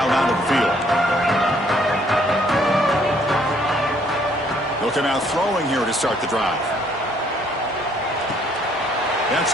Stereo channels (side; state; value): both; normal; correlation 0.64